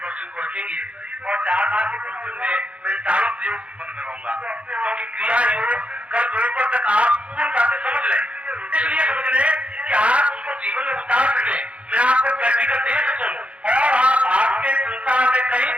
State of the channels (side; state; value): left; late; 0.062 ms